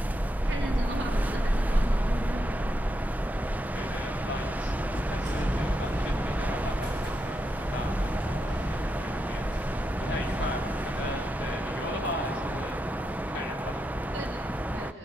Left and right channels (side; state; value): both; normal; correlation 0.84